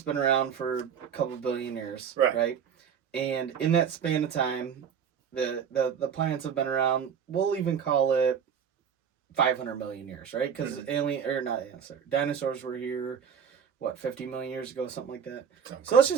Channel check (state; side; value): quieter; left; 7.5 dB